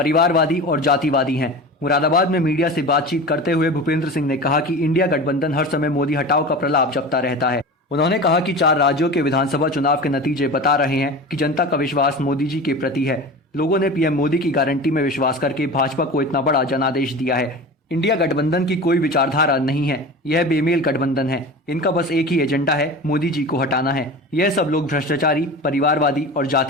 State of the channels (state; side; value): normal; both; correlation 0.32